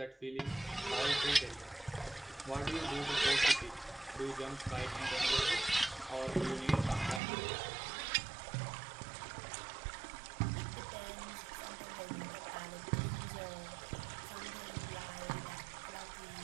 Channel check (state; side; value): drops out; left; at 7.2 s